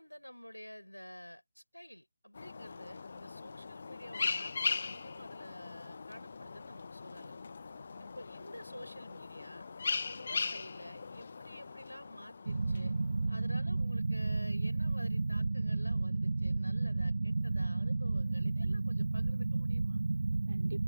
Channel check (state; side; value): inverted; both; correlation -0.95